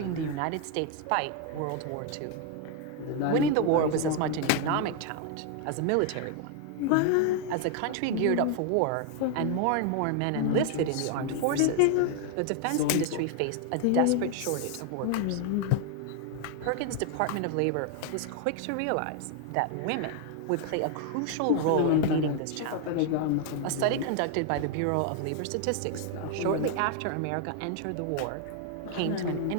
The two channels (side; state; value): both; different; correlation 0.00